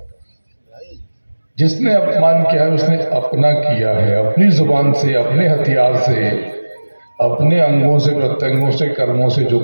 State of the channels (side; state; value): both; inverted; correlation -1.00